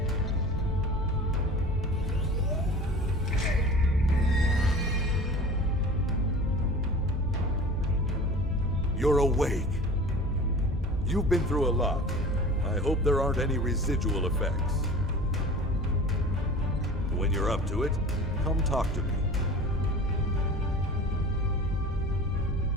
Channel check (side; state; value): both; normal; correlation 0.39